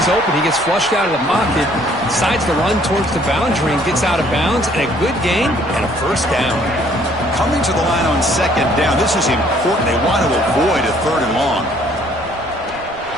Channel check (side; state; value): right; noise; rumble, 20 dB below the sound